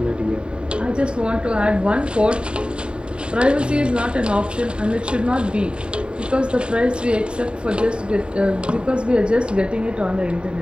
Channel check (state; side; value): late; left; 0.051 ms